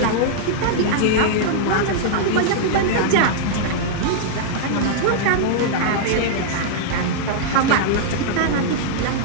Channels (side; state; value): both; different; correlation -0.01